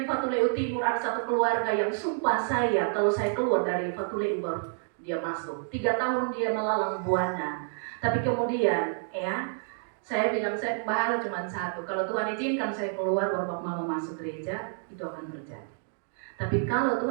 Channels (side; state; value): left; silent; digital silence